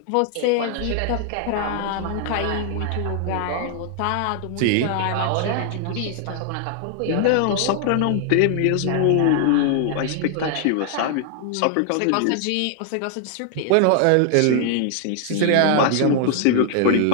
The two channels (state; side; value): different; both; correlation 0.00